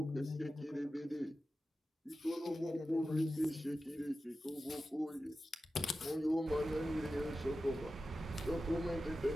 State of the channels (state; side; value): normal; both; correlation 0.93